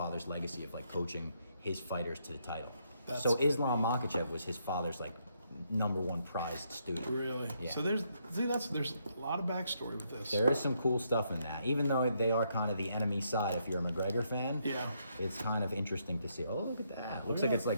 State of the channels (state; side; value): inverted; both; correlation -0.75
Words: legacy of like coaching his fighters to the title. So Islam Makhachev was his father's like #1 prized student. Really? Yeah. So there's a lot of backstory with this. There is some cool stuff in that. Even though they are kind of the enemy side, if you're a McGregor fan, it's kind of interesting to see. Oh, look at that. Looks like it's